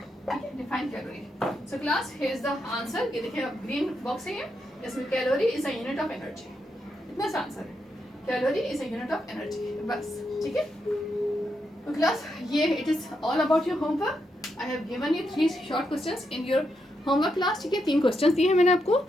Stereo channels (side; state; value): both; normal; correlation 0.82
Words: है, define calorie. So class here is the answer. ये देखिए ग्रीन बॉक्स है ये, इसमें calorie is a unit of energy. इतना सा आंसर है, calorie is a unit of energy. बस ठीक है. तो क्लास ये it is all about your homework. I have given you 3 short questions in your homework class. ठीक है, 3 क्वेश्चंस दिए हैं मैंने आपको,